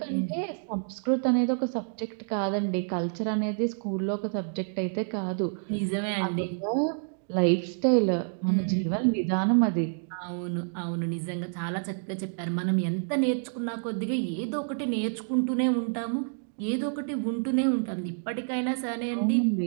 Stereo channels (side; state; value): left; silent; digital silence